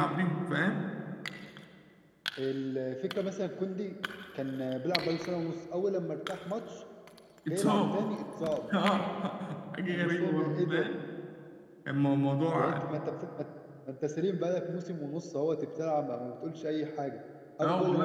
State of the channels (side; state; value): both; identical; correlation 1.00